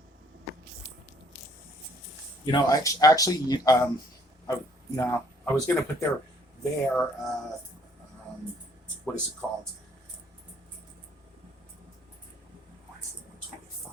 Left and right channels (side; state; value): both; normal; correlation 0.62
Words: Actually, no, I was going to put their what is it called? 125,